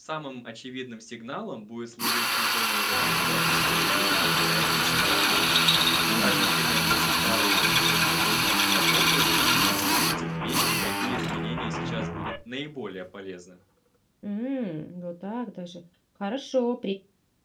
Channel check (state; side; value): identical; both; correlation 1.00